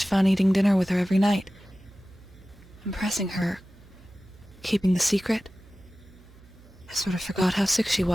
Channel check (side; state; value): right; noise; hum, 24 dB below the sound